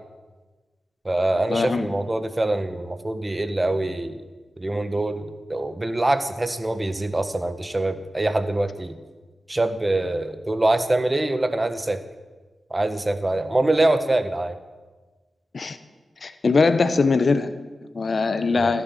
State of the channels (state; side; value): normal; both; correlation 0.94